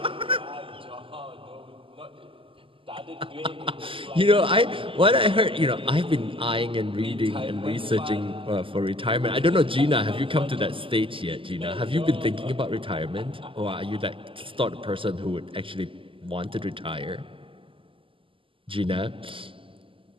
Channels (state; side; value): late; left; 0.25 ms